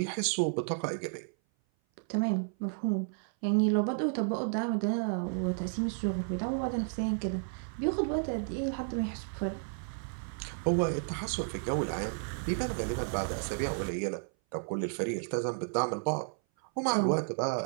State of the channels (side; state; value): left; silent; 56 dB below the other